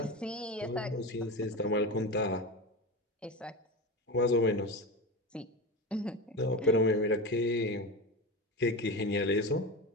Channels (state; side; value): normal; both; correlation 0.23